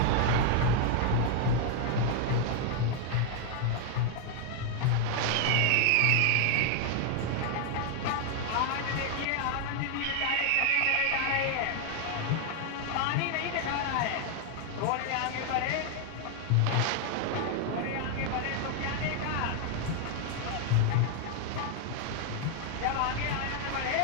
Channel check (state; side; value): different; both; correlation 0.00